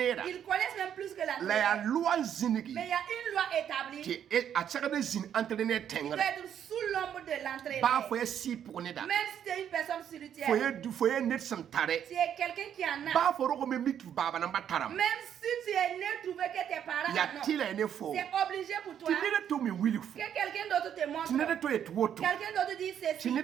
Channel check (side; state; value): left; quieter; 9.3 dB